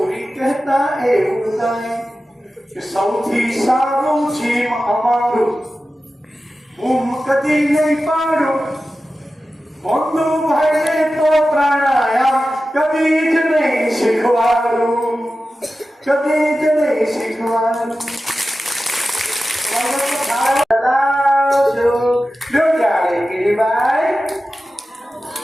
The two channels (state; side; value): normal; both; correlation 0.94